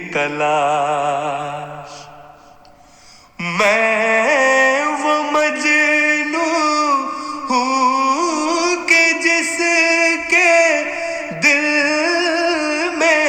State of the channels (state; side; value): identical; both; correlation 1.00